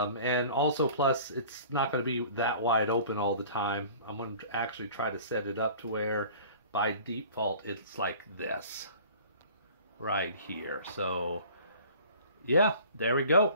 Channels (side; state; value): both; inverted; correlation -0.46